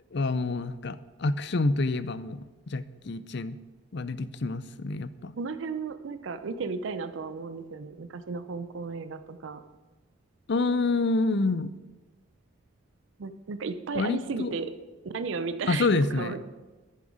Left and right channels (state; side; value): normal; both; correlation 0.44